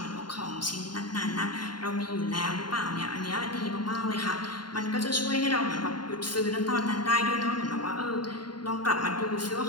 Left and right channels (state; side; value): late; right; 0.71 ms